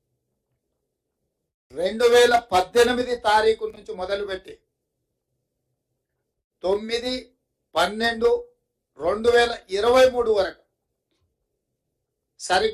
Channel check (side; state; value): both; identical; correlation 1.00